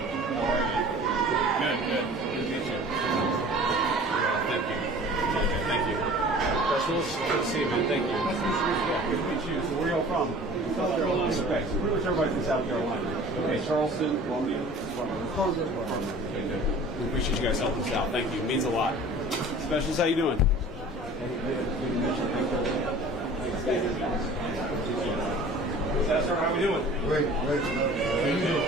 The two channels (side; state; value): both; normal; correlation 0.45